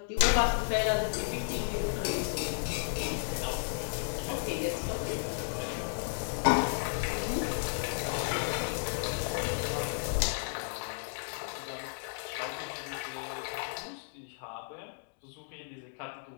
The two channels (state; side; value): silent; right; digital silence